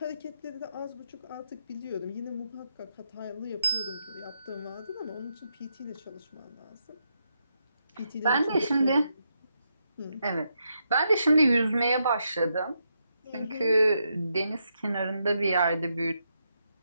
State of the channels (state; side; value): inverted; both; correlation -0.81